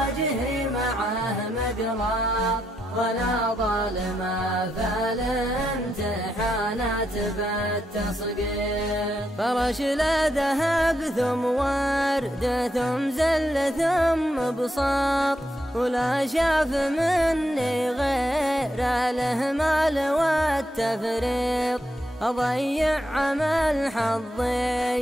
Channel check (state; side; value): normal; both; correlation 0.81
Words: معه مقرار، ولا ظالم فالامتحانات بالتصقيط. فرش لا ذهب ثم ورد ثم زل ثم بساط، ولا شاف مني غير الإهمال والتفريط. أضيع عمل